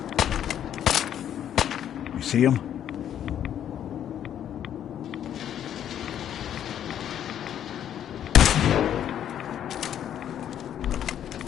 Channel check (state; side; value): quieter; right; 10.1 dB